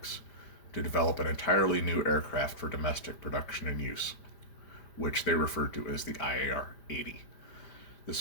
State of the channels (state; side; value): late; right; 5.0 ms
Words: to develop an entirely new aircraft for domestic production and use, which they referred to as the IAR-80.